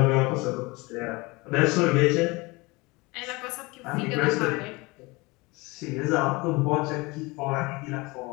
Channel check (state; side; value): quieter; right; 24.4 dB